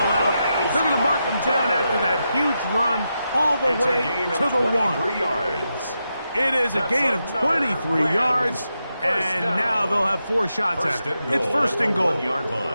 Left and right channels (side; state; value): both; inverted; correlation -0.86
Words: out. They're going to mark him down after that huge run all the It's way a gain to of the 1. 23 yards. It is a That's gain of another 23 Rams yards. first And down. now they'll have 4 shots First at it. and It's goal 1st at and the goal. 1-yard